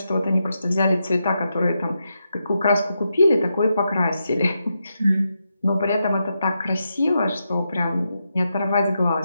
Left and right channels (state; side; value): inverted; both; correlation -0.85